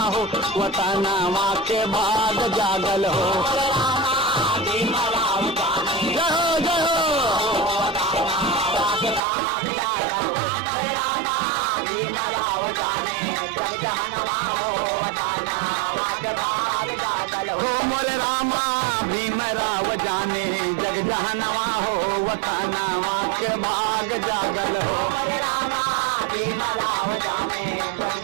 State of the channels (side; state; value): left; drops out; at 9.2 s